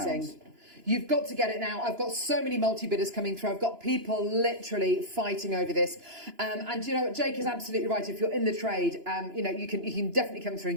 You've got to get it now. I've got so many multi-bidders coming through. I've got people literally fighting over this. And you know what, Jake is absolutely right. If you're in the trade, you know, you can definitely come through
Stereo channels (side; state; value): left; late; 2.9 ms